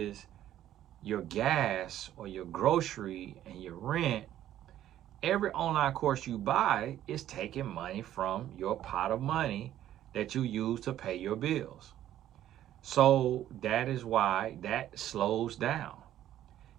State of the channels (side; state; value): left; quieter; 12.2 dB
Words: your gas or your grocery and your rent, every online course you buy is taking money from your pot of money that you use to pay your bills. So that is why that slows down.